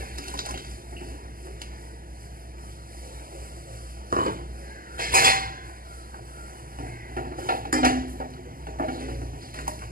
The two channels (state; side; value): late; left; 0.42 ms